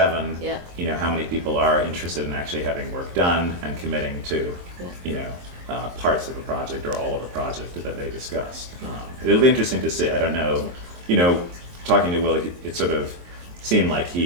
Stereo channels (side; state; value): left; late; 23 ms